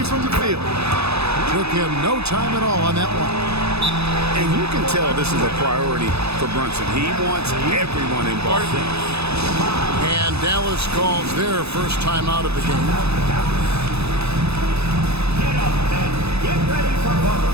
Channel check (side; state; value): left; late; 0.79 ms